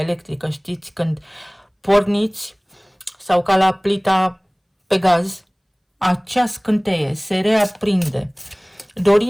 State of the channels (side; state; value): both; identical; correlation 1.00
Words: știți, când porniți, sau ca la plita pe gaz, acea scânteie se reaprinde.